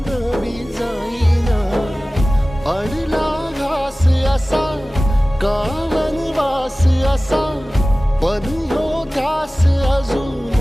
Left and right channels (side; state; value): both; normal; correlation 0.97